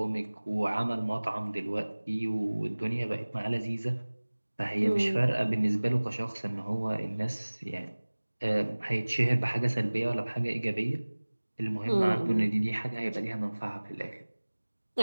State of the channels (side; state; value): both; inverted; correlation -1.00